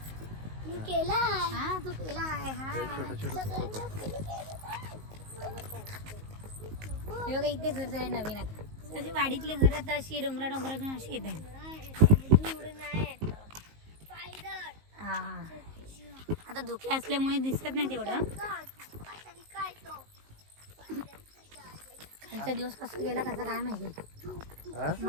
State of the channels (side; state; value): left; late; 19 ms